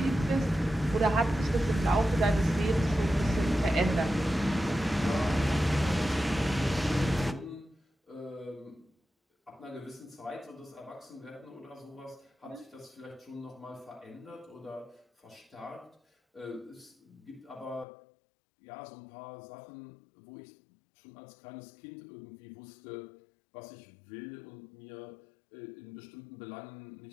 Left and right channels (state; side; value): drops out; right; at 17.9 s